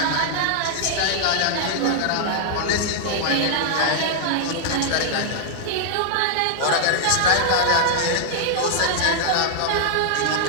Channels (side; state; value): both; different; correlation -0.01